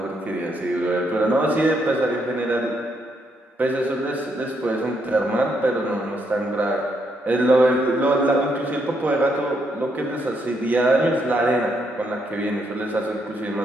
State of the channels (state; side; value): normal; both; correlation 0.76